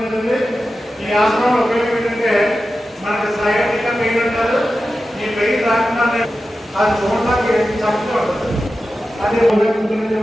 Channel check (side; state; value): both; normal; correlation 0.92